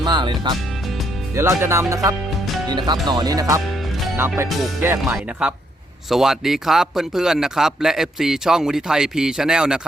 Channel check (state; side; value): normal; both; correlation 0.74